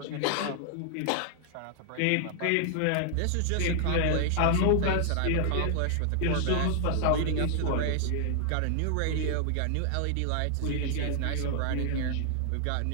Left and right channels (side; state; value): both; different; correlation 0.00